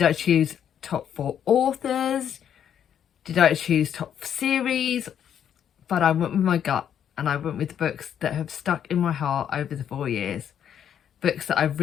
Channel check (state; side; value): quieter; right; 9.2 dB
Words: I choose top 4 authors? Did I choose top series? But I went with my gut and I went with the books that have stuck in my heart over the 4 years. Books that I've